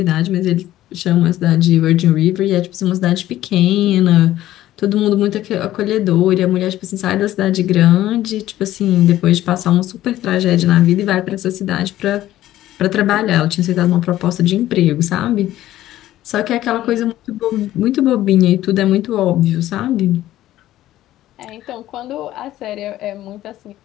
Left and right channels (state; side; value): quieter; right; 14.1 dB